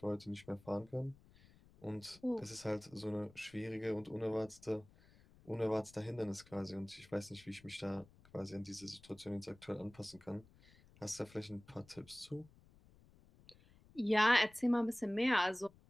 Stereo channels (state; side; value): noise; left; rumble, 25 dB below the sound